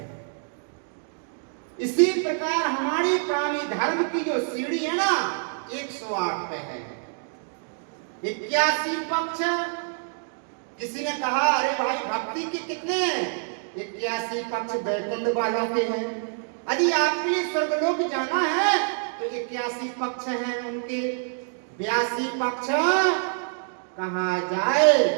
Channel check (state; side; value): silent; left; 61 dB below the other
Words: इसी प्रकार हमारी प्राणी धर्म की जो सीढ़ी है ना, 108 पे है। 81 पक्ष। किसी ने कहा अरे भाई भक्ति के कितने हैं? 81 पक्ष वैकुंठ वालों के हैं। यदि आपके लिए स्वर्गलोक जाना है तो 81 पक्ष हैं उनके। 82 पक्ष कहा जाए